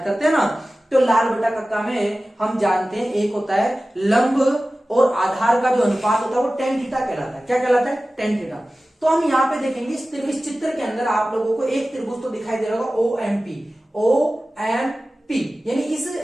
करते हैं ना। तो लाल बटा कक्का में हम जानते हैं एक होता है लंब और आधार का जो अनुपात होता है वो टेन थीटा कहलाता है। क्या कहलाता है? Tan theta. तो हम यहाँ पे देखेंगे इस चित्र के अंदर आप लोगों को एक त्रिभुज तो दिखाई दे रहा होगा OMP। पी, यानी इस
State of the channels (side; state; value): both; normal; correlation 0.96